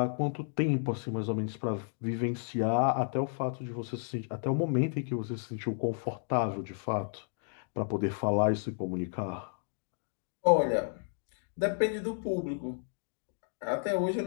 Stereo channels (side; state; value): right; silent; digital silence